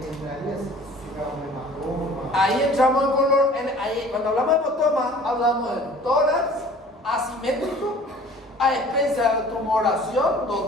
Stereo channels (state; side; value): normal; both; correlation 0.48